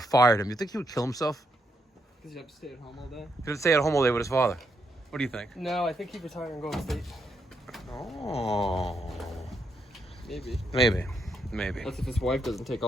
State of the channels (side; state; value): both; normal; correlation 0.78